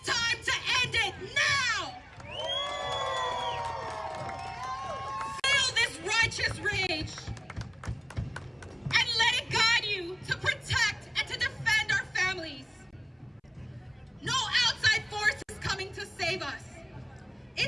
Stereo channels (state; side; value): identical; both; correlation 1.00